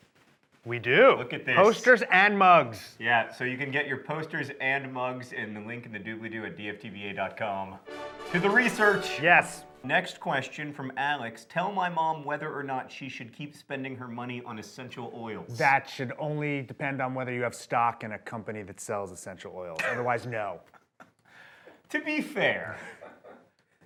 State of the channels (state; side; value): identical; both; correlation 1.00